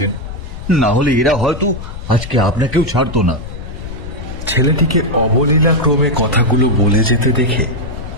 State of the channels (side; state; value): left; noise; rumble, 10 dB below the sound